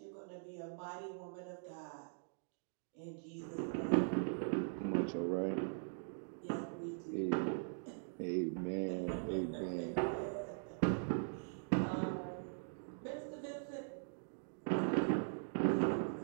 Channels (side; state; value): left; silent; digital silence